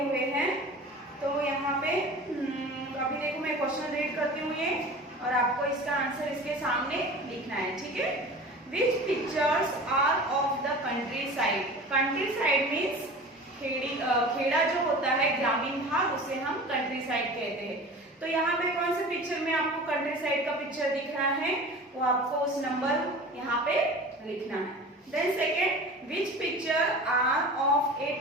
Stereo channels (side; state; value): both; normal; correlation 0.37